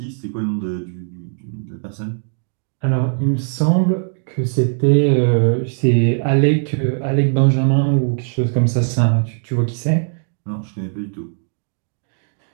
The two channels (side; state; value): left; silent; 65 dB below the other